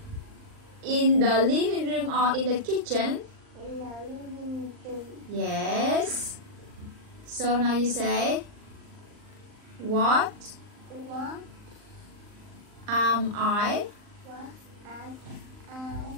In the living room or in the kitchen? in the living room. Yes. So now you say, what What am I? was I?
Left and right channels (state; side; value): late; left; 39 ms